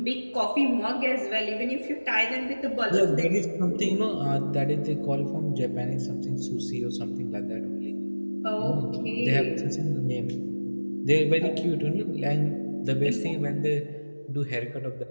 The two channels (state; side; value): inverted; both; correlation -1.00